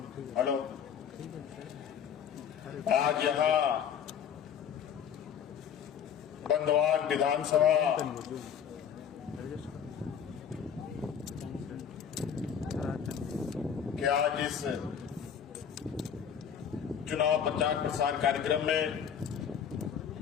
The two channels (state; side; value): quieter; right; 8.0 dB